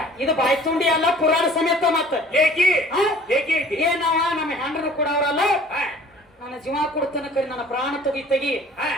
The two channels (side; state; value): both; normal; correlation 0.50